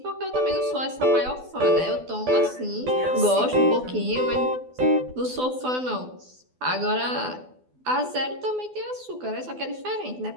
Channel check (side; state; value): left; late; 12 ms